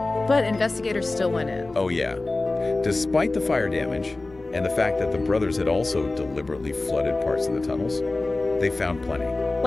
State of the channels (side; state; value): right; quieter; 3.1 dB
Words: But investigators still went in. Oh yeah. Despite the fire damage, and the fact that the brothers had also deliberately flooded parts of the tunnels, they found plenty.